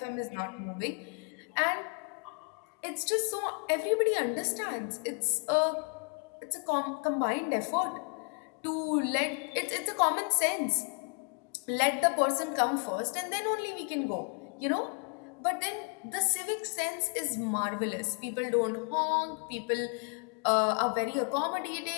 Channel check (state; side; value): quieter; right; 39.7 dB